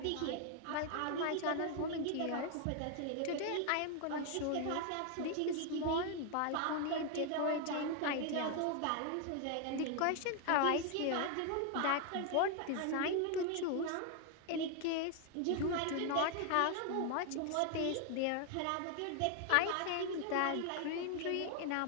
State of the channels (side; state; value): both; different; correlation 0.00